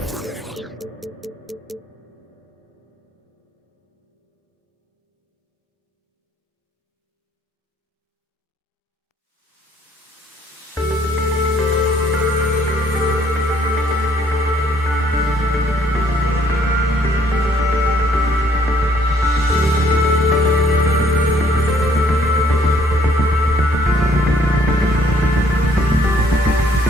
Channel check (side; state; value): both; normal; correlation 0.64